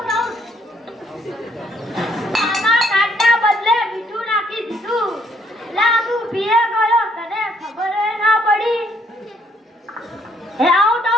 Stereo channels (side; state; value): both; normal; correlation 0.67